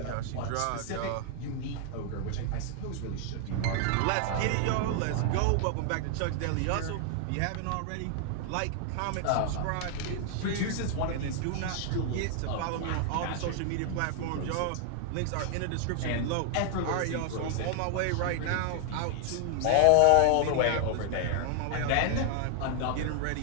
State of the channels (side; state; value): both; different; correlation 0.00